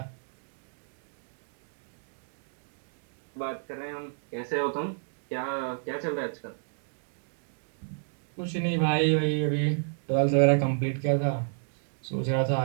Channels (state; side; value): silent; left; digital silence